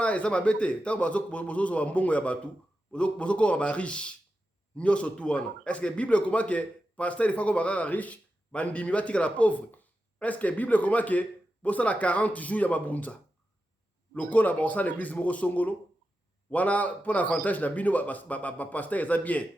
eza mabete tango bozozo mbongo ya batu bozokoma ba riche nyonso tu wana est-ce que bible comment que pasteur il faut ko bakaka riche bandimi batika la pauvre est-ce que bible comment que bosala 40 jours ya mabunza lokola bosala l'église moko songolo wana pour avantage na bino ba pasteur eza bien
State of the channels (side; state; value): both; normal; correlation 0.90